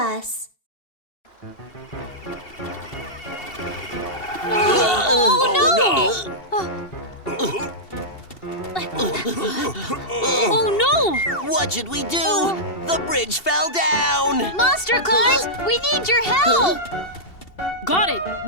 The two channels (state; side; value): late; right; 2.7 ms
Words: Oh no! What should we do? The bridge fell down! Monster Claus, we need your help! Got it!